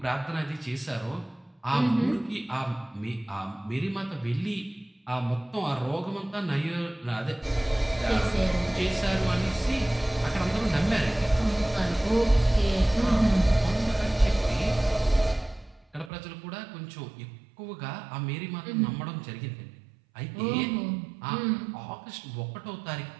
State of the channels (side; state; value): left; drops out; at 16.1 s